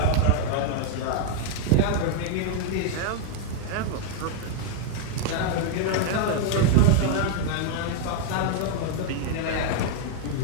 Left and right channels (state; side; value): different; both; correlation 0.00